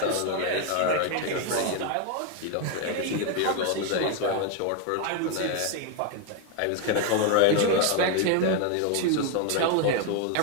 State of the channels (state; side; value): different; both; correlation 0.01